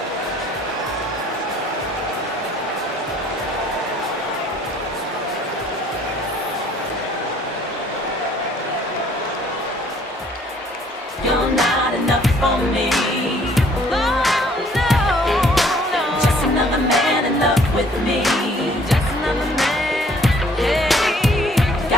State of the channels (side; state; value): both; normal; correlation 0.59